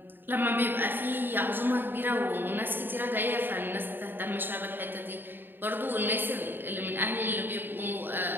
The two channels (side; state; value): left; late; 0.095 ms